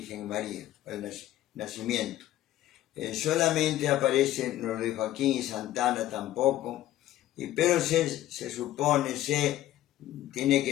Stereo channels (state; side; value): quieter; right; 13.9 dB